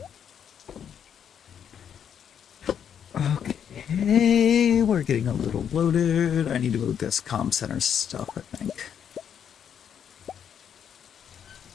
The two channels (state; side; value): quieter; right; 8.4 dB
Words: Okay, we're getting a little loaded. I need to move this comm center stuff, I think.